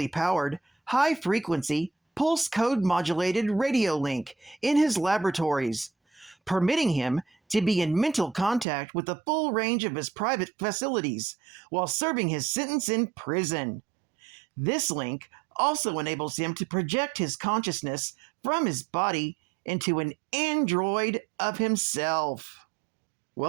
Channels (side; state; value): left; drops out; at 8.7 s